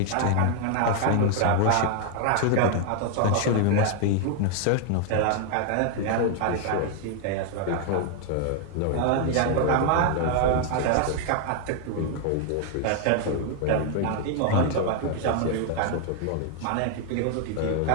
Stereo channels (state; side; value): different; both; correlation 0.00